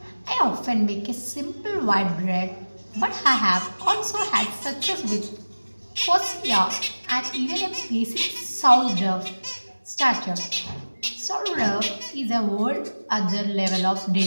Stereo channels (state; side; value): inverted; both; correlation -1.00